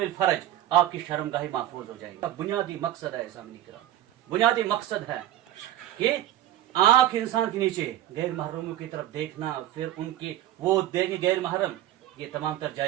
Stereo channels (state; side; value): quieter; left; 13.0 dB